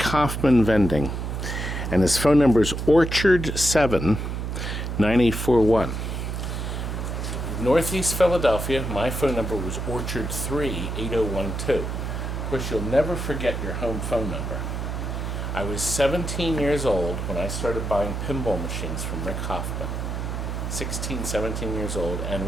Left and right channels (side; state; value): right; noise; hum, 4 dB below the sound